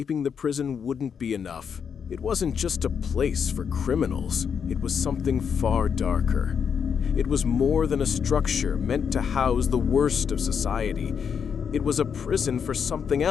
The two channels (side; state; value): right; quieter; 7.0 dB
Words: the prison wouldn't be enough. It wasn't just a place for criminals. It was something far darker. It was more than a structure meant to house the worst of society. It was a prison for something